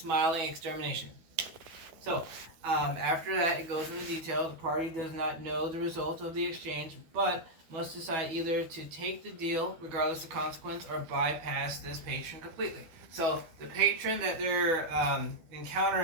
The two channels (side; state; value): left; late; 12 ms